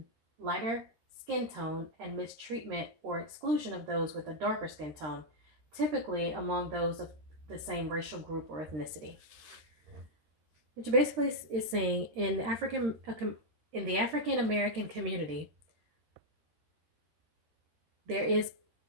lighter skin tone and mistreatment or exclusion of those with a darker skin tone, typically among those of the same racial group or ethnicity. Which basically is saying in the African American community, there is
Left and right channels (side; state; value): left; late; 13 ms